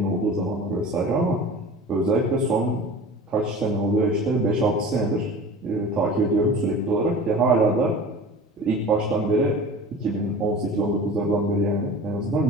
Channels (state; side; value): normal; both; correlation 0.39